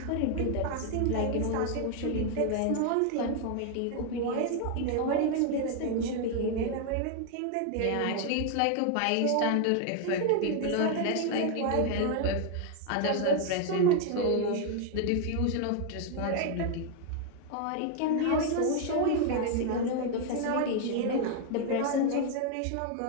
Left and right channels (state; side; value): different; both; correlation 0.00